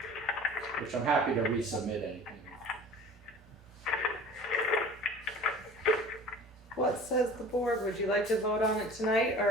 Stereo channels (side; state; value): both; normal; correlation 0.43